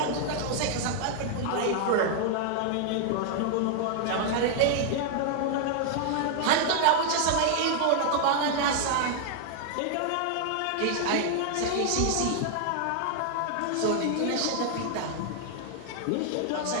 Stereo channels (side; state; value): both; different; correlation 0.00